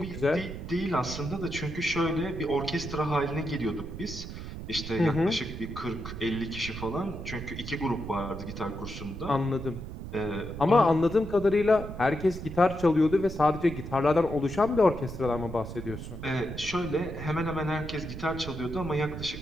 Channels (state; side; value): noise; right; rumble, 9 dB below the sound